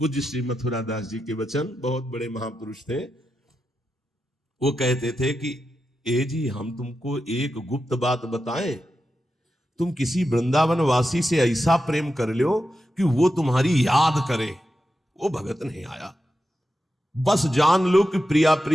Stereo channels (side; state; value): both; normal; correlation 0.89